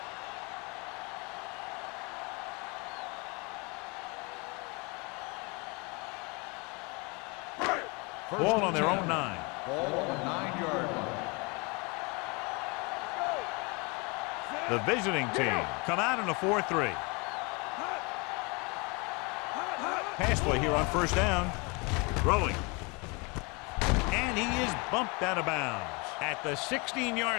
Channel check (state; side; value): quieter; right; 29.4 dB